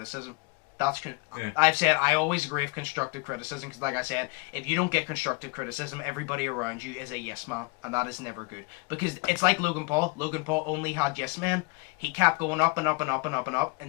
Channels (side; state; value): right; quieter; 28.8 dB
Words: I've said I always agree with constructive criticism because, like I said, if you don't get constructive criticism, everybody around you is a yes man, and that is never good. Because it's like Logan Paul. Logan Paul only had yes men. He kept going up and up and up and up and up